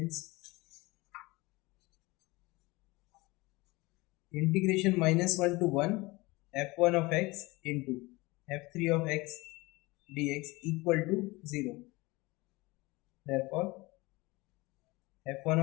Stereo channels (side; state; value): right; quieter; 22.8 dB